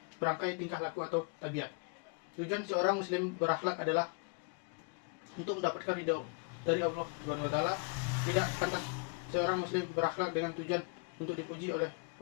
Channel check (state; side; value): quieter; right; 35.9 dB